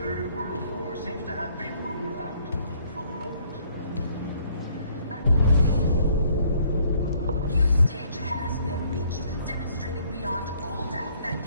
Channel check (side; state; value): both; inverted; correlation -0.63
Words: world war seems to have been ruled out for the moment. A new stage has been reached, demonstrating beyond all doubt that